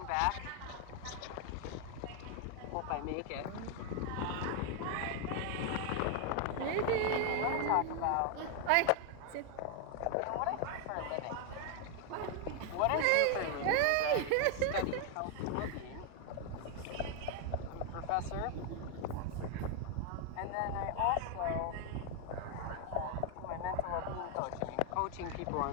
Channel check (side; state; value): both; different; correlation 0.00